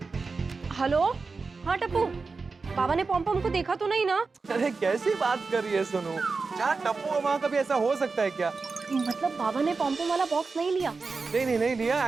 हेलो, हाँ टप्पू, बाबा ने पॉम पॉम को देखा तो नहीं ना? अरे कैसी बात कर रही है सोनू? जहाँ टप्पू है वहाँ कभी ऐसा हो सकता है क्या? मतलब बाबा ने पॉम पॉम वाला बॉक्स नहीं लिया? नहीं लिया।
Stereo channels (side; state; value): left; quieter; 4.3 dB